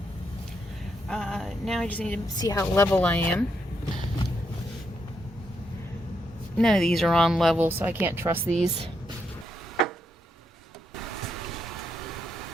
Now I just need to see how level I am. None of these are on level, so I can't trust these.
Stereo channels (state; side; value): normal; both; correlation 0.79